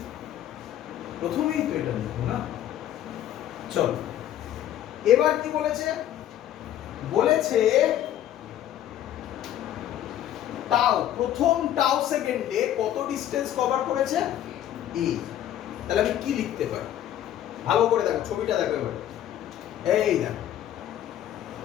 প্রথমেই তো এটা লিখবো না? চলো এবার কি বলেছে? বলেছে টাউ, প্রথম টাউ সেকেন্ডে কত ডিসটেন্স কভার করেছে? a। তাহলে আমি কি লিখতে পারি? ভালো করে দেখো, ছবিটা দেখো এবার। এই দেখো,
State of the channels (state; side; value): quieter; right; 11.7 dB